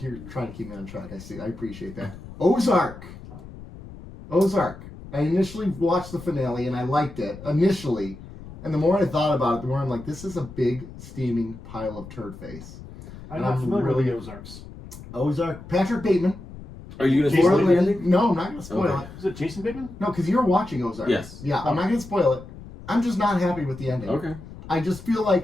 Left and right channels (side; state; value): left; noise; rumble, 15 dB below the sound